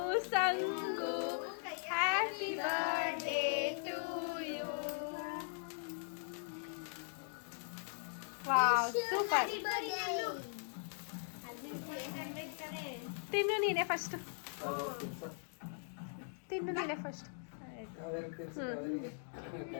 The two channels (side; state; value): right; silent; digital silence